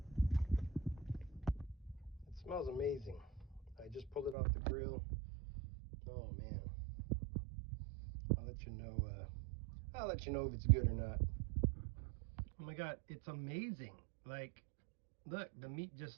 It smells amazing. I just pulled it off the grill. Oh man, I'll let you know if it's good or not. Oh my god, it's amazing. Like, look, the meat just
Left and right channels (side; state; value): left; drops out; at 4.4 s